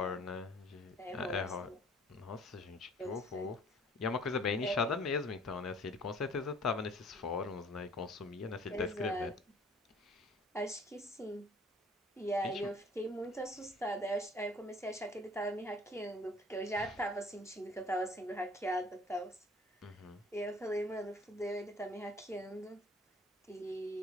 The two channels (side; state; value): both; normal; correlation 0.53